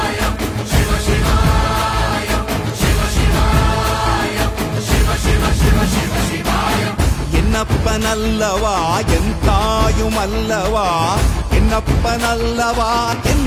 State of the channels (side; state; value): both; identical; correlation 1.00